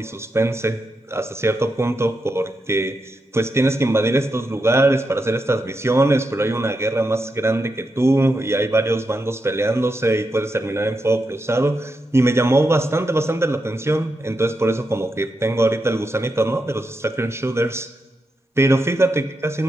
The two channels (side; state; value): both; normal; correlation 0.85